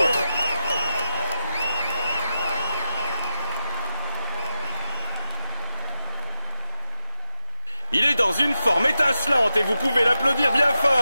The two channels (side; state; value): both; inverted; correlation -0.87